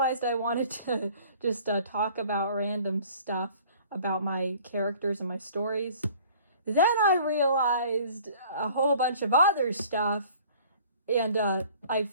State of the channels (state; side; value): inverted; both; correlation -0.51